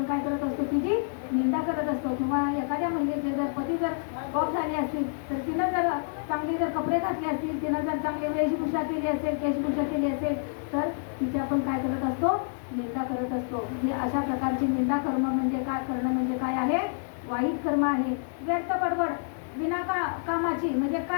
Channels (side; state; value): right; silent; digital silence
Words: काय करत असतो, तिची निंदा करत असतो. किंवा एखाद्या महिलेचे जर पती जर गॉप झाली असतील तर तिनं जर चांगले जर कपडे घातले असतील, तिनं जर चांगली वेशभूषा केली असेल, केशभूषा केली असेल तर तिची आपण काय करत असतो, निंदा करत असतो. म्हणजे अशा प्रकारची निंदा करणं म्हणजे काय, करणं म्हणजे काय आहे, वाईट कर्म आहे. व्यर्थ बडबड बिना कामाची, म्हणजे